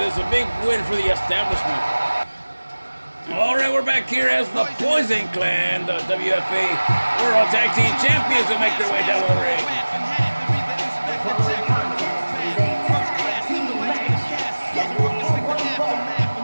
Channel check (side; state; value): both; inverted; correlation -1.00